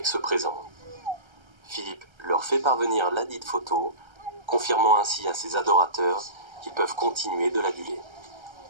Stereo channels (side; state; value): left; late; 1.3 ms